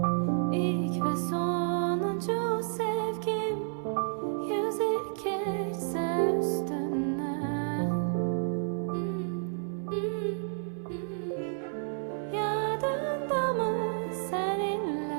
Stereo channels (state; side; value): silent; left; 57 dB below the other